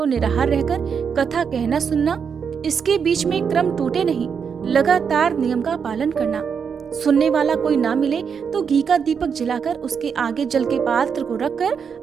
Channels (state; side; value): quieter; left; 6.6 dB